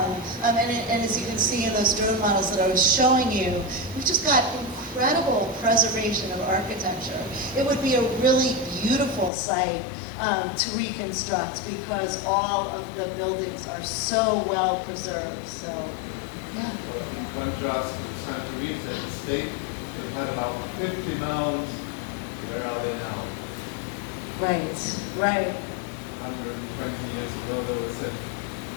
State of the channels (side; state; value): right; drops out; at 9.3 s